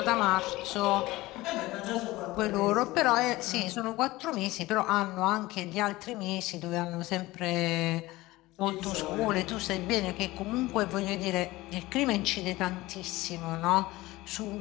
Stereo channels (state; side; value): quieter; right; 19.1 dB